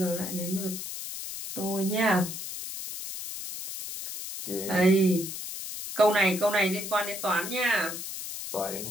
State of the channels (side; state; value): left; noise; hiss, 7 dB below the sound